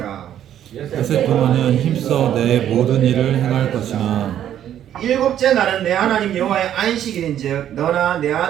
엿새 동안은 힘써 내 모든 일을 행할 것이나 일곱째 날은 내 하나님 여호와의 안식일인즉 너나 내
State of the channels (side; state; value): left; quieter; 10.7 dB